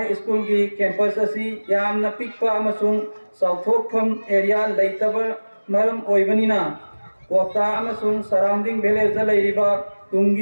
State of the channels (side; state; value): both; inverted; correlation -1.00